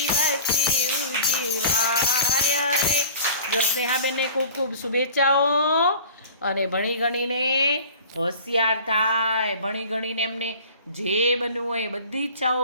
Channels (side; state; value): both; inverted; correlation -0.43